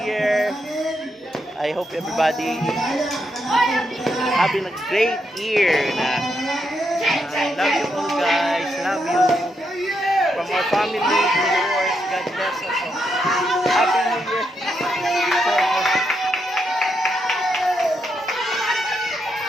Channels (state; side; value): normal; both; correlation 0.81